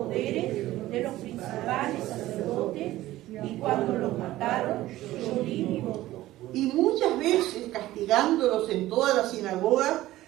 de los principales sacerdotes, y cuando los mataron, yo di mi voto. Y muchas veces, castigándolos en todas las sinagogas,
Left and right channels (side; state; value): left; quieter; 15.9 dB